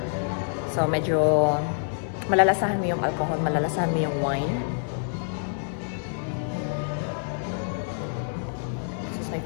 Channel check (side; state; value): right; silent; 60 dB below the other